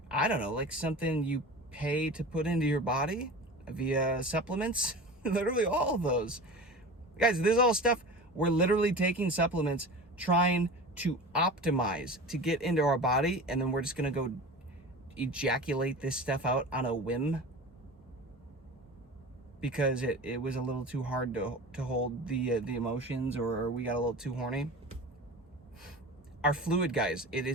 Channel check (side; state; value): both; normal; correlation 0.34